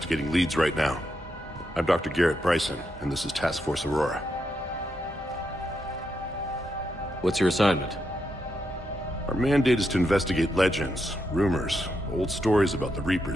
leads right now. I'm Dr. Bryson, and this is Task Force Aurora. What's your assignment? Our mandate is to investigate legends, rumors, old stories about the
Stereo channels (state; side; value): normal; both; correlation 0.82